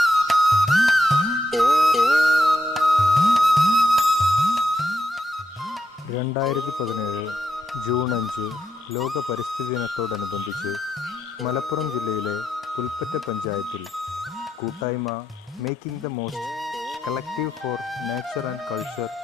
5 ലോക പരിസ്ഥിതി ദിനത്തോടനുബന്ധിച്ച് മലപ്പുറം ജില്ലയിലെ പുൽപ്പറ്റ പഞ്ചായത്തിൽ കൂട്ടായ്മ making the most collective for nature and culture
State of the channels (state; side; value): normal; both; correlation 0.82